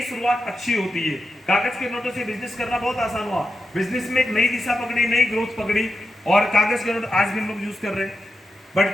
शुरुआत अच्छी होती है। कागज के नोटों से बिजनेस करना बहुत आसान हुआ, बिजनेस में एक नई दिशा पकड़ी, नई ग्रोथ पकड़ी और कागज के नोट आज भी हम लोग यूज कर रहे हैं। बट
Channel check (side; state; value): both; normal; correlation 0.89